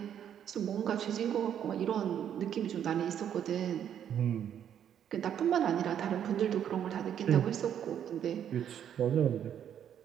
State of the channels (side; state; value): left; quieter; 9.4 dB